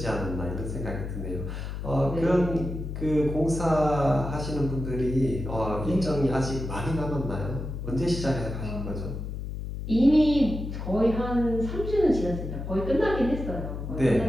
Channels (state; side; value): noise; left; hum, 6 dB below the sound